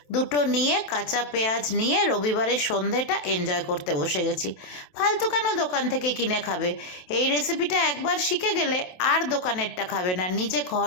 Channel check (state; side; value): late; right; 27 ms